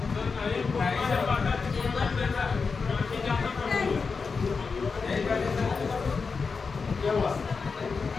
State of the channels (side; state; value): right; quieter; 4.9 dB